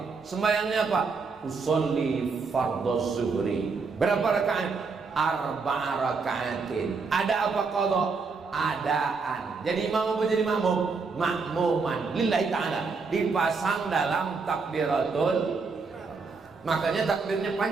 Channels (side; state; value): left; quieter; 4.7 dB